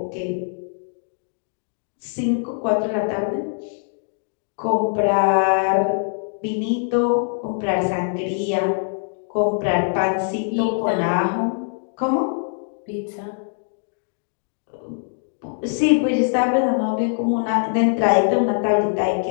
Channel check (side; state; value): right; silent; 64 dB below the other